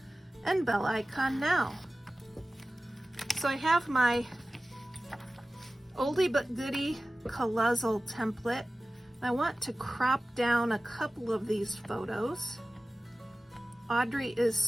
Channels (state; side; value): normal; both; correlation 0.96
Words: and bell icon now. So I have my oldie but goodie Colozzle template. I want to crop down a couple of these photos. Audrey is